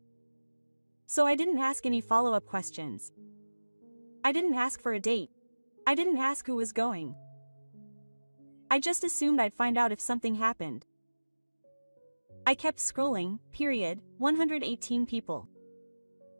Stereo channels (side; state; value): both; inverted; correlation -1.00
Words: So I didn't ask any follow-up questions. I didn't ask for a date. I didn't ask who was going. I just assumed I'd find out if something happened. I kept scrolling, period, 118 people.